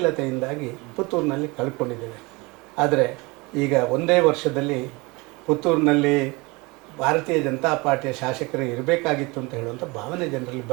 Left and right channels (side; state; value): left; quieter; 25.4 dB